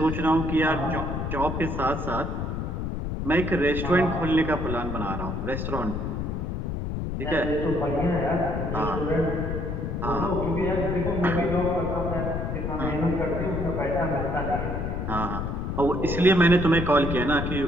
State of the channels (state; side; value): noise; left; rumble, 3 dB below the sound